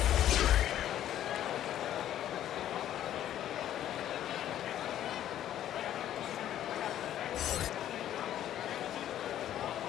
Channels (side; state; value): right; quieter; 11.6 dB